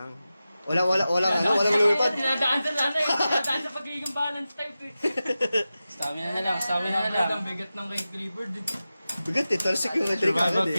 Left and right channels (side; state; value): both; inverted; correlation -0.94